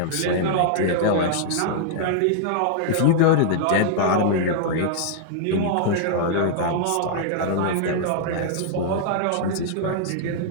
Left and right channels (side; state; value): both; different; correlation -0.01